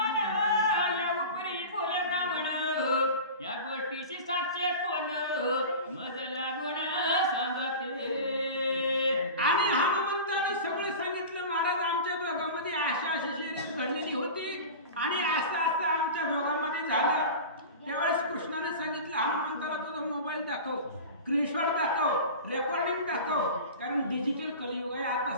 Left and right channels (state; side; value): inverted; both; correlation -0.32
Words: या उपरी बोले ब्राह्मण या गोष्टीची साक्ष कोण मज लागून सांगते आणि हनुमंतानं सगळं सांगितलं महाराज आमच्या दोघांमध्ये अशा शर्यत घडलेली होती आणि असं आमच्या दोघांमध्ये झालं त्यावेळेस कृष्णाने सांगितलं हनुमंताला तुझा मोबाईल दाखव स्क्रीनशॉट दाखव रेकॉर्डिंग दाखव कारण डिजिटल कलियुग आहे